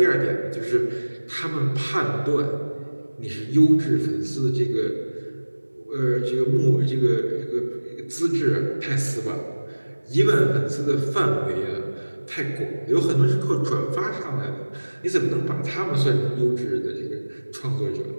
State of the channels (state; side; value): inverted; both; correlation -1.00